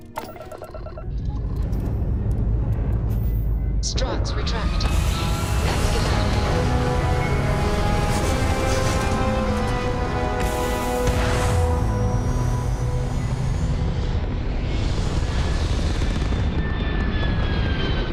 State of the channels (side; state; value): both; identical; correlation 1.00